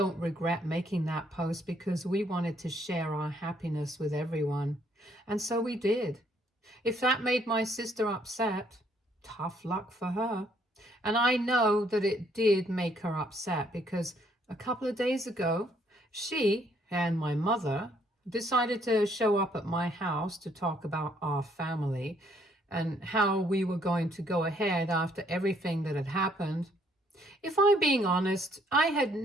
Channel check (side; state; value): both; normal; correlation 0.67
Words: regret making that post because we wanted to share our happiness with everyone, and so we did. If that made my sister upset, tough luck for her. And I know that it did make her upset because a couple of days ago, she and my mother decided to show up at my house to talk about our family and how we were going to go ahead after everything that had happened. If I'm being honest, I had